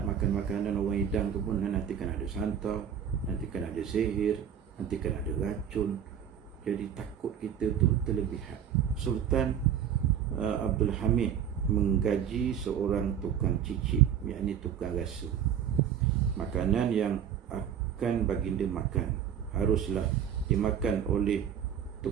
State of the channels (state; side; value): quieter; left; 8.9 dB